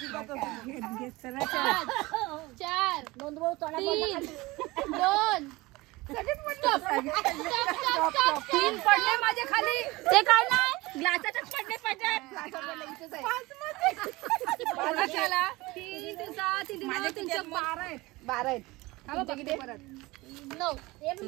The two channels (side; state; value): left; quieter; 21.4 dB